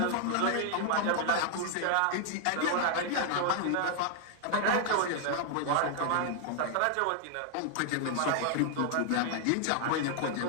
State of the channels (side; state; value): both; different; correlation 0.00